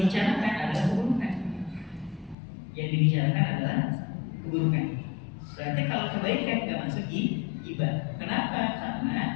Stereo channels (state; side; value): drops out; right; at 2.4 s